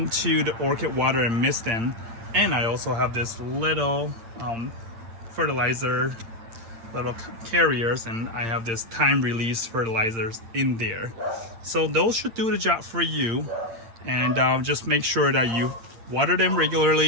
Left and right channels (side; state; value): left; late; 8.8 ms